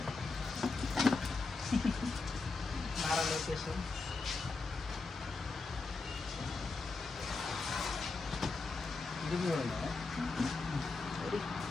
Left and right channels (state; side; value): quieter; right; 3.8 dB